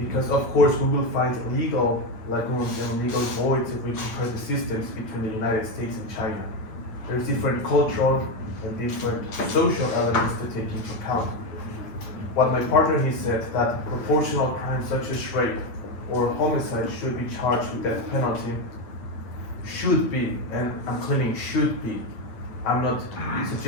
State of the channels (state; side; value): late; right; 9.1 ms